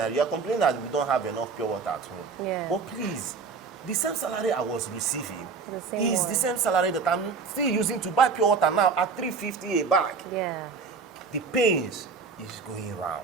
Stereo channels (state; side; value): quieter; left; 5.0 dB